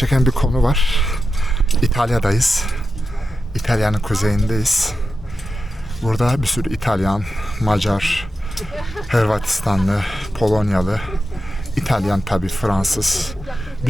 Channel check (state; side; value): normal; both; correlation 0.91